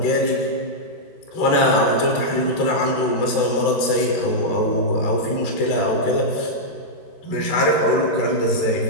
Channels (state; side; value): late; right; 13 ms